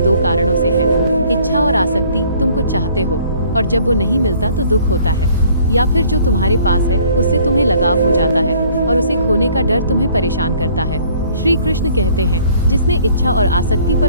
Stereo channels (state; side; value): inverted; both; correlation -0.58